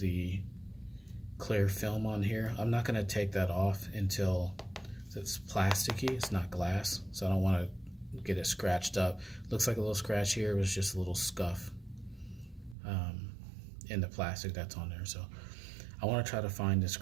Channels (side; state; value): left; drops out; at 12.8 s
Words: clear film on here. I'm not going to take that off until it's plasticky, it's not glass, so I don't want to get it scratched up. Looks like a little scratch here, it was just a little scuff in the plastic that's on there. So I want to try to find a